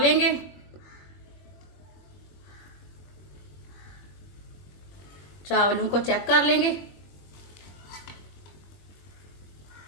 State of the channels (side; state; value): right; late; 21 ms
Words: चावलों को चेक कर लेंगे।